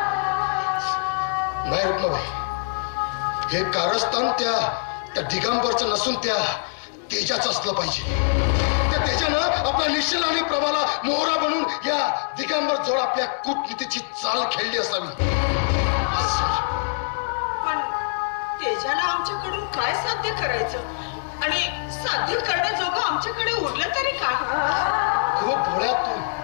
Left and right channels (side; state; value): right; silent; digital silence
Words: नाही रुक्माबाई, हे कारस्थान त्या दिगंबरचं नसून त्या तेजाचं असलं पाहिजे. त्या तेजानं आपल्या निश्चल आणि प्रभाला मोहरा बनून या दिगंबर जोड आपल्या कूटनीतीची चाल खेळली असावी. पण तेजाला आमच्याकडून काय साध्य करायचं आणि साध्य करण्याजोगं आमच्याकडे उरलं तरी काय? खूप भोळ्यात